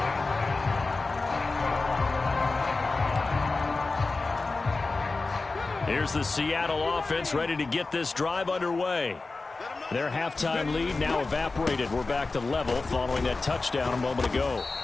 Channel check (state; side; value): quieter; right; 3.7 dB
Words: Here's the Seattle offense ready to get this drive underway. Their halftime lead now evaporated. We're back to level following that touchdown a moment ago.